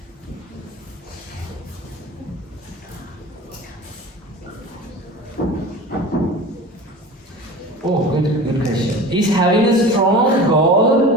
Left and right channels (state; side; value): normal; both; correlation 0.35